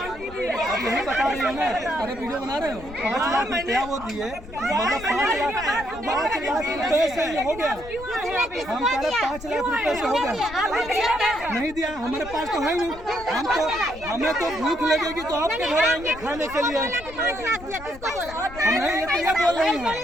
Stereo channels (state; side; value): noise; left; rumble, 16 dB below the sound